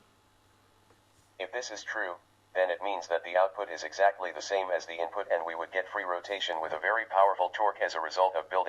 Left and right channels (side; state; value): both; identical; correlation 1.00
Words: If this is true, then it means that the output is exactly the same as the input, and we would get free rotation with a very powerful torque as a result of